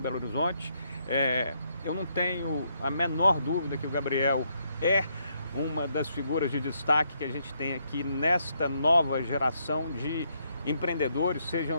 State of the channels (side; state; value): both; inverted; correlation -0.75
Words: Horizonte. Eu não tenho a menor dúvida que o Gabriel é uma das figuras de destaque que a gente tem aqui nesta nova geração de empreendedores,